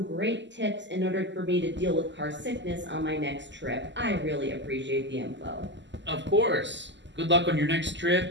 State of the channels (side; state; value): left; late; 0.53 ms